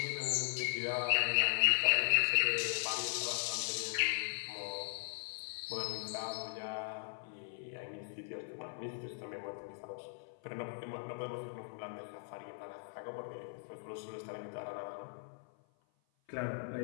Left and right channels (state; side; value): silent; right; 52 dB below the other